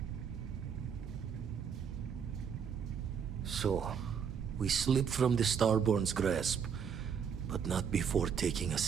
So, we slipped from the Starborn's grasp, but not before taking a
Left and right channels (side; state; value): left; quieter; 7.2 dB